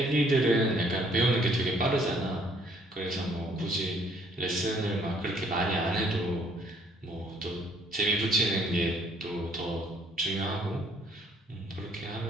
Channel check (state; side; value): normal; both; correlation 0.63